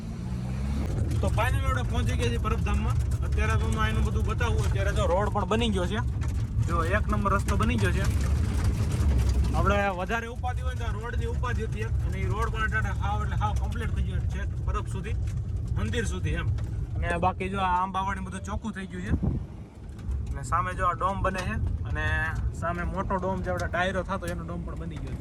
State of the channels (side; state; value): both; identical; correlation 1.00